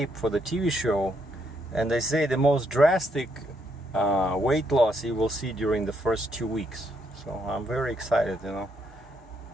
for the TV show. And they say the most drastic weight loss you will see during the first 2 weeks. So I'm very excited, you know,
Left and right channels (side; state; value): both; normal; correlation 0.75